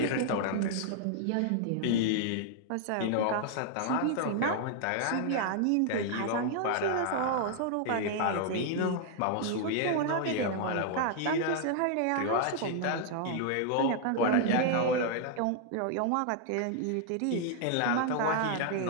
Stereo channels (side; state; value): both; different; correlation 0.00